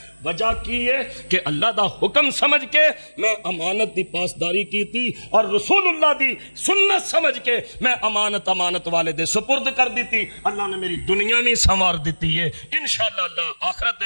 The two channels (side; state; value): both; inverted; correlation -1.00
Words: وجہ کی ہے کہ اللہ دا حکم سمجھ کے میں امانت دی پاسداری کیتی، اور رسول اللہ دی سنت سمجھ کے میں امانت والے دے سپرد کر دیتی۔ اللہ نے میری دنیا بھی سنوار دیتی ہے، انشاءاللہ اللہ آخرت